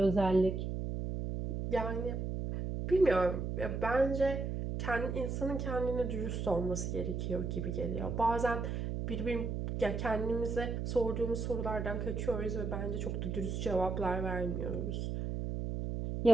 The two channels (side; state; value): right; noise; hum, 2 dB below the sound